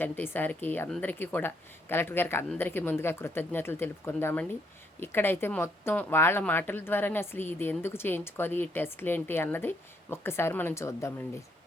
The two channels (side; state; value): both; normal; correlation 0.71